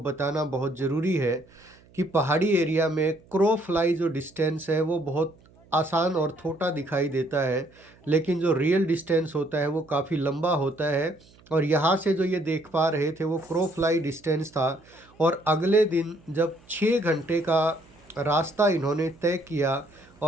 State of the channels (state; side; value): noise; right; hum, 28 dB below the sound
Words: बताना बहुत ज़रूरी है कि पहाड़ी एरिया में क्रो फ्लाई जो डिस्टेंस है वो बहुत आसान और छोटा दिखाई देता है, लेकिन जो रियल डिस्टेंस होता है वो काफ़ी लंबा होता है। और यहाँ से जो ये देख पा रहे थे वो क्रो फ्लाई डिस्टेंस था। और अगले दिन जब 6 घंटे का रास्ता इन्होंने तय किया